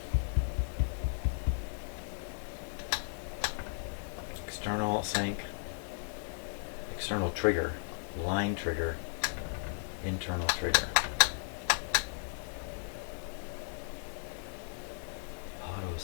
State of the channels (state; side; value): silent; right; digital silence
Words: External sink. External trigger, line trigger, internal trigger. Auto